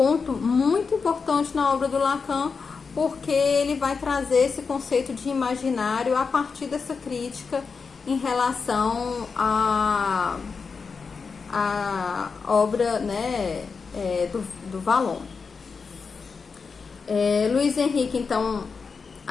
muito importante na obra do Lacan, porque ele vai trazer esse conceito de imaginário a partir dessa crítica em relação à obra, né, do Vallon. Luiz Henrique, então,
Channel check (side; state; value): right; quieter; 5.1 dB